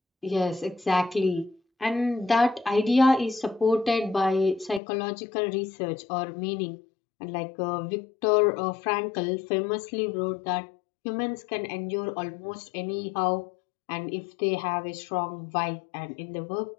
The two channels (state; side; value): drops out; right; at 4.8 s